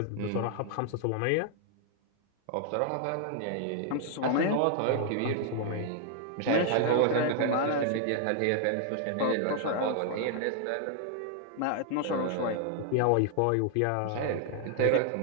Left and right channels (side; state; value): both; different; correlation 0.00